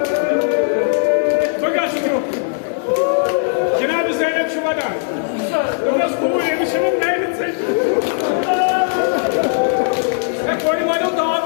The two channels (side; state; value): right; silent; 58 dB below the other